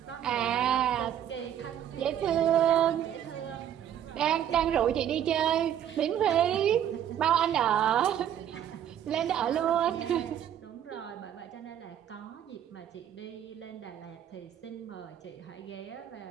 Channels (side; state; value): left; quieter; 10.1 dB